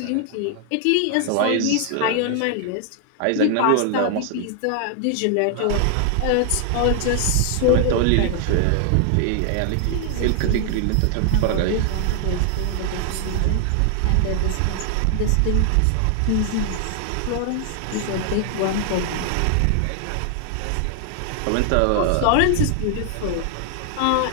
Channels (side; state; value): both; different; correlation 0.00